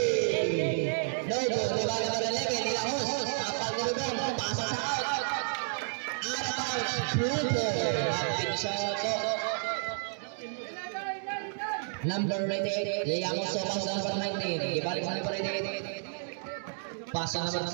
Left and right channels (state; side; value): silent; left; digital silence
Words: No good. Diba number 11, nila host. Apal ni Rubén. Pasa sa out. Out of bounds. Pluto. Rapid shot. Number 88, Yayamos Sopas number 19. Ibalik sa number 88. Pasa